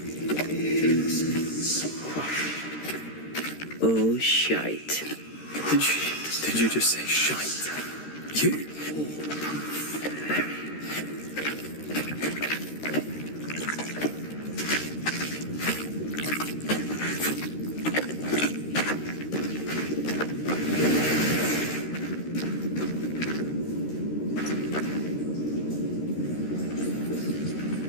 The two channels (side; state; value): right; late; 13 ms